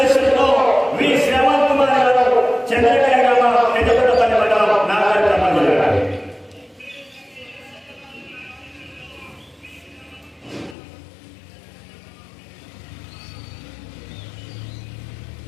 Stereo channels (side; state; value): right; drops out; at 10.8 s